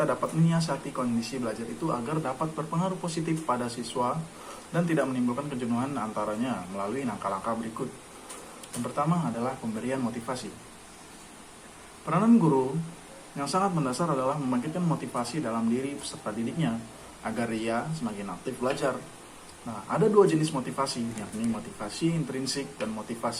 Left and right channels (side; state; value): both; identical; correlation 1.00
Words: dapat menyiasati kondisi belajar itu agar dapat berpengaruh positif pada siswa dan tidak menimbulkan kejenuhan antaranya melalui langkah-langkah berikut. Yang pertama adalah pemberian motivasi. Peranan guru yang sangat mendasar adalah membangkitkan motivasi dalam diri peserta didiknya agar ia semakin aktif belajar. Nah, ada dua jenis motivasi, yakni motivasi intrinsik dan